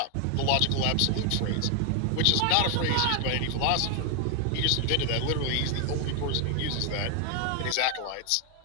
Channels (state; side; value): different; both; correlation 0.00